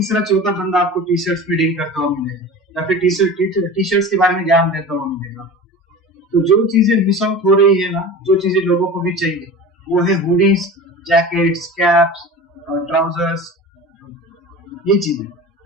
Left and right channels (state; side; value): normal; both; correlation 0.34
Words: चौथा बंदा आपको टी शर्ट्स में डील करता हुआ मिलेगा, या फिर टी शर्ट्स के बारे में ज्ञान देता हुआ मिलेगा। तो जो चीजें मिस आउट हो रही है ना, जो चीजें लोगों को भी चाहिए, वो है हुडीज, जैकेट्स, कैप्स, ट्राउजर्स, ये चीजें,